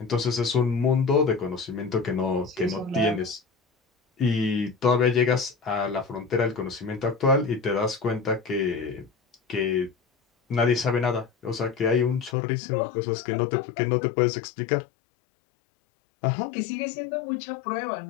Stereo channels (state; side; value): drops out; right; at 12.4 s